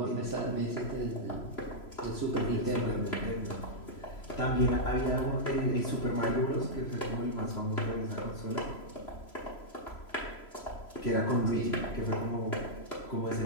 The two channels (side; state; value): right; late; 3.0 ms